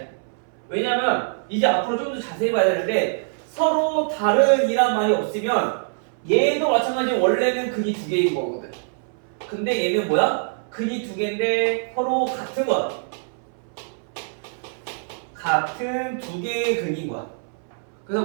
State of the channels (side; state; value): left; silent; 63 dB below the other